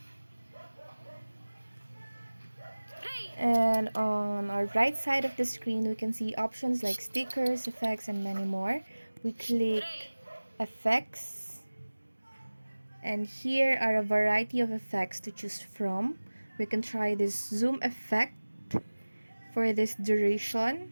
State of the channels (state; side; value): inverted; both; correlation -1.00